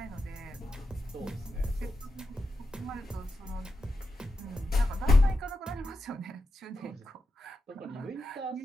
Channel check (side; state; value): both; normal; correlation 0.88